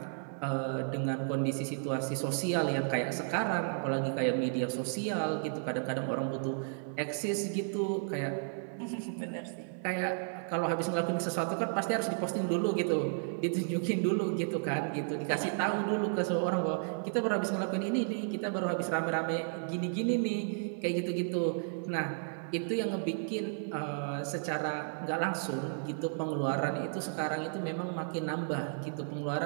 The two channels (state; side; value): silent; left; 56 dB below the other